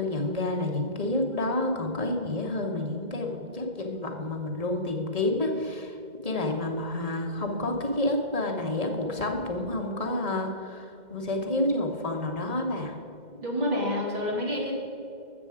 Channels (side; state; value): left; late; 2.1 ms